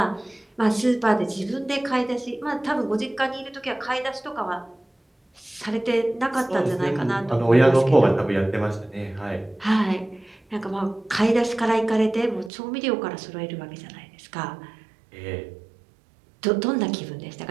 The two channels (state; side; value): drops out; left; at 12.5 s